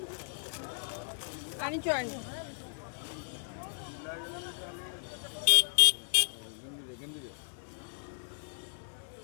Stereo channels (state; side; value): silent; right; digital silence